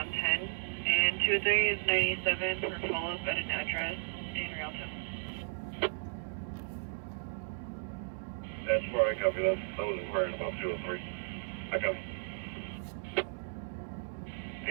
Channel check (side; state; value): left; silent; digital silence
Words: 10. And 203 is 97 for follow-up at an address in Rialto. That's where I copy that. That was inquiring about 203. I copy.